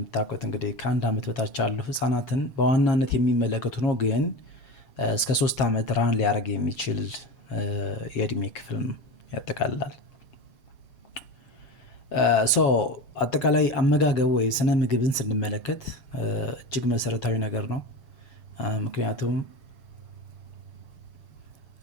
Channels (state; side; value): late; right; 7.4 ms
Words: እንግዲህ ከአንድ ዓመት በታች ያሉ ህጻናትን በዋናነት የሚመለከቱ ነው፣ ግን እስከ 3 ዓመት ራን ሊያደርግ የሚችል የእድሜ ክፍል ያጠቃልላል። ሶ አጠቃላይ አመጋገብ ወይ ስነ ምግብን ስንመለከት እጅግ መሰረታዊ ነገር ነው። ምክንያቱም